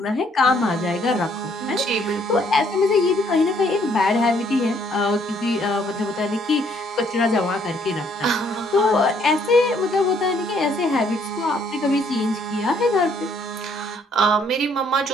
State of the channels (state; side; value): normal; both; correlation 0.66